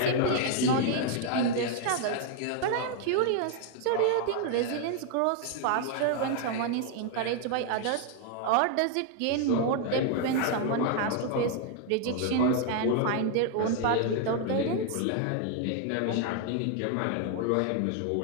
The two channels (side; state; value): both; different; correlation 0.00